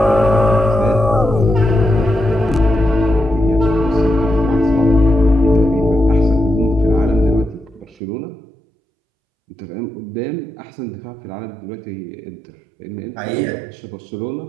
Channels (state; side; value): drops out; left; at 8.0 s